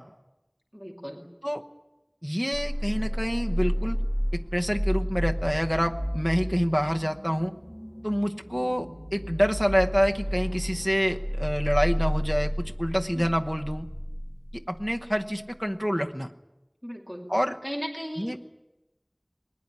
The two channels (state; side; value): identical; both; correlation 1.00